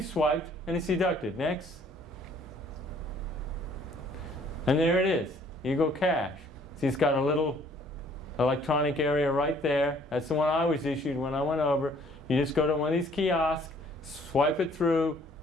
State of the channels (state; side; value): normal; both; correlation 0.59